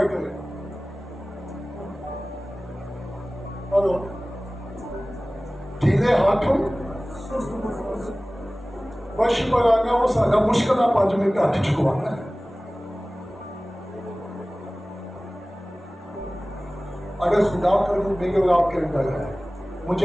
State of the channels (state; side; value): normal; both; correlation 0.98